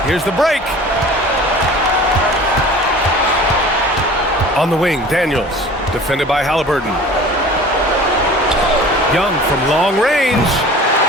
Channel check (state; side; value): normal; both; correlation 0.43